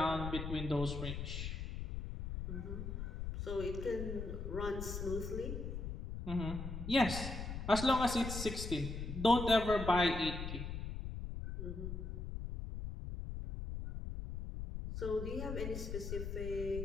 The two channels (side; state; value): left; noise; rumble, 5 dB below the sound